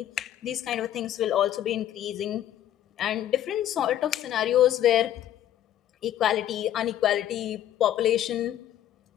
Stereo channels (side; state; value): right; quieter; 11.7 dB